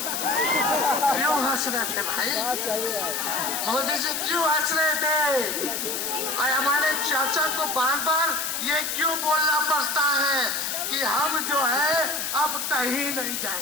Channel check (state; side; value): noise; left; hiss, 2 dB below the sound